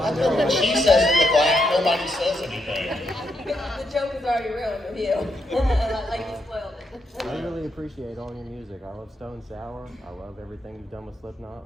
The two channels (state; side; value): normal; both; correlation 0.80